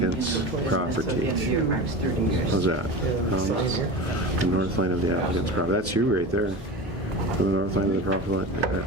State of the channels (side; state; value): both; normal; correlation 0.29